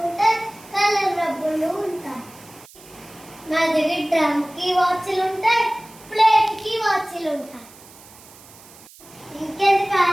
ఉంటాయి, కలర్ రబ్బర్లు ఉంటాయి. మా దగ్గర డ్రమ్ కి వాచ్లు ఉంటాయి, ప్లేట్ కి వాచ్లు ఉంటాయి. ఇంకెందుకు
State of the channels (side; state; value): right; noise; hiss, 22 dB below the sound